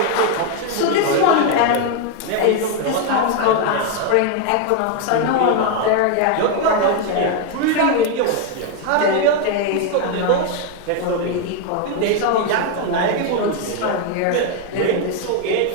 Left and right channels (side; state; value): both; different; correlation 0.01